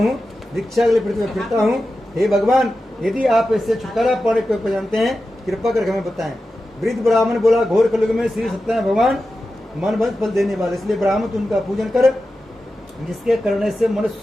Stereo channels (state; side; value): normal; both; correlation 0.92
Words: दीक्षा के लिए पृथ्वी में फिरता हूँ। हे भगवान, यदि आप इससे छुटकारा पाने को जानते हैं, कृपा करके हमें बताएं। वृद्ध ब्राह्मण बोला, घोर कलयुग में श्री सत्यनारायण भगवान मन भंग फल देने वाले, इसलिए ब्राह्मण उनका पूजन कर, जिसके करने से मनुष्य